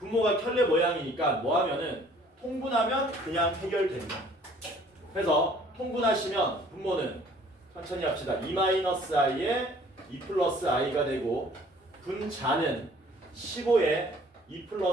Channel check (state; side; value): normal; both; correlation 0.55